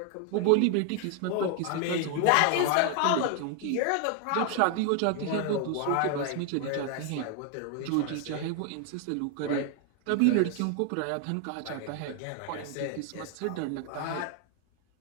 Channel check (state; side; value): different; both; correlation 0.01